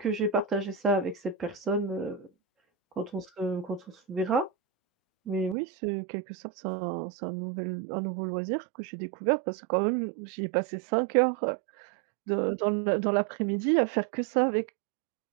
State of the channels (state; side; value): drops out; left; at 5.6 s